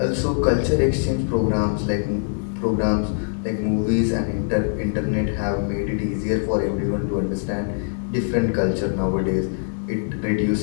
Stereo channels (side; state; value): right; silent; 64 dB below the other